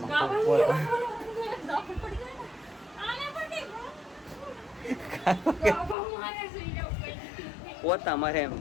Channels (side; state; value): right; drops out; at 6.0 s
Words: પોતા મારે એમ